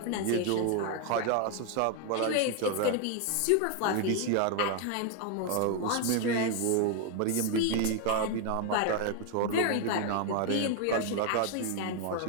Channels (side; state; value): both; different; correlation 0.01